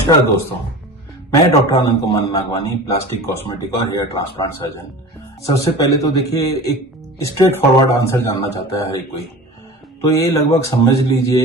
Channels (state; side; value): normal; both; correlation 0.35